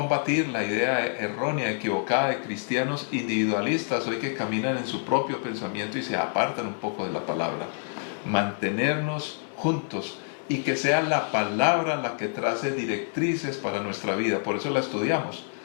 la idea errónea, equivocada de cristianos individualistas hoy que caminan en su propio pensamiento y se apartan un poco de la palabra. Mantenernos juntos y que sea la palabra la que trace directrices para nuestra vida. Por eso la estudiamos.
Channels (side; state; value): right; silent; 60 dB below the other